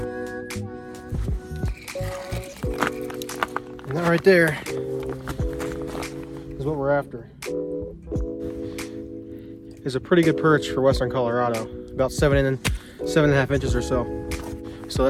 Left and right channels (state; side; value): identical; both; correlation 1.00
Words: And that right there is what we're after. Is a pretty good perch for western Colorado, about 7.5 inches or so. So